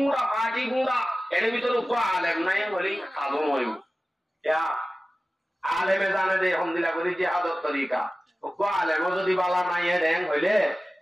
পাটি গুঁড়া এর ভিতরে কো আলেম নাই বলি আদম হইব ইয়া আলেমে জানে দে হামদুলিল্লাহ বলি যে আদত তরিকা কো আলেম যদি বালা নাই দেন হইলে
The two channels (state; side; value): normal; both; correlation 0.95